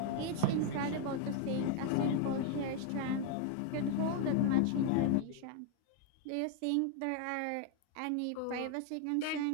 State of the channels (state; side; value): different; both; correlation 0.00